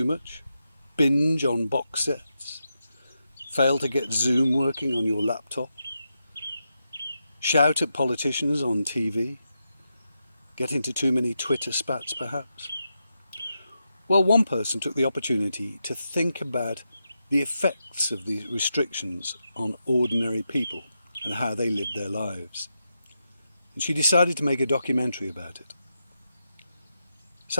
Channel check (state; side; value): inverted; both; correlation -0.86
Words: much? Binge on box sets? Fail to get Zoom working on your laptop? Shout at politicians on TV? Get into too many Twitter spats perhaps? Well, one person took the opportunity to think about the effects of these restrictions on ordinary people and how they lived their lives. And she decided to make a documentary about it.